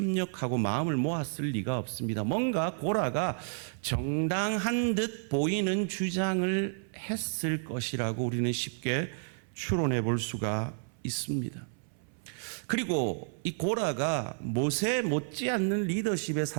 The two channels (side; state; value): left; silent; 57 dB below the other